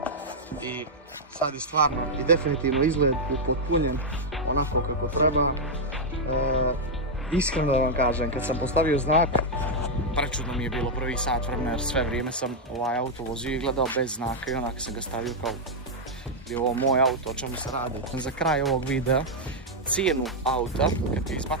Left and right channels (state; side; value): normal; both; correlation -0.03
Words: i sad je stvarno i definitivno izgled upotpunjen onako kako treba. Iskreno da vam kažem, kad sam postavio znak, prečudno mi je bilo prvi sat vremena jer sve vrijeme sam ovaj auto vozio i gledao bez znaka i onak sam ga stavio kao je ovo moj auto, o čemu se radi. Za kraj ovog videa, cijenu auta, kad ti